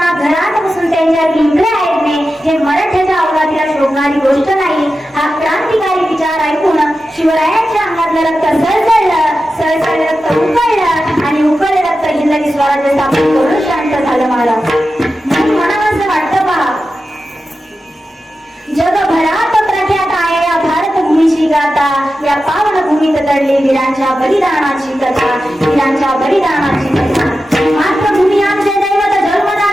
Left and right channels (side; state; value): both; normal; correlation 0.92